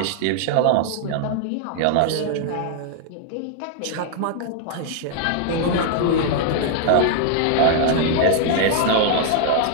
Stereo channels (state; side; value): different; both; correlation 0.00